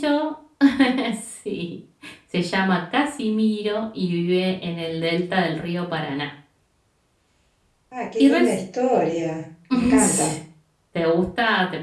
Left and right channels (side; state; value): both; identical; correlation 1.00